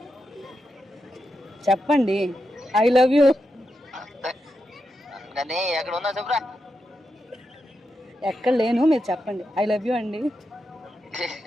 చెప్పండి. I love you. కానీ ఎక్కడ ఉన్నావు చెప్పురా. ఎక్కడ లేను, మీరు చెప్పండి. ఐ లవ్ యూ అండి.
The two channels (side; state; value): both; normal; correlation 0.87